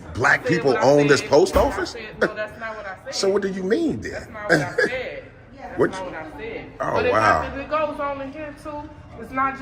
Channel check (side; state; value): both; identical; correlation 1.00